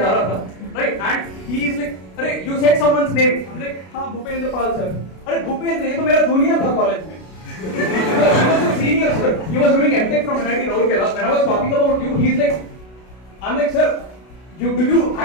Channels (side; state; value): right; late; 32 ms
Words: रहा था right and he is like अरे you said someone's name I am like हां भूपेंद्रपाल सर अरे भूपेंद्र ये तो मेरा जूनियर था कॉलेज में he was a senior, sir. He was doing MTech from NIT Rourkela. When I was talking about you, he's like, I'm like, sir, do you